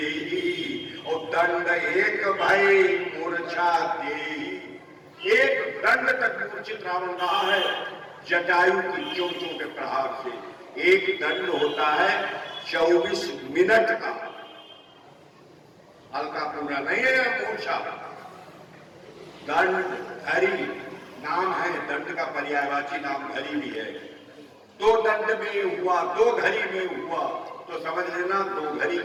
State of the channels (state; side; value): identical; both; correlation 1.00